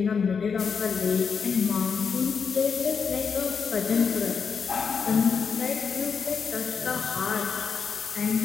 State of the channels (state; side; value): quieter; right; 6.0 dB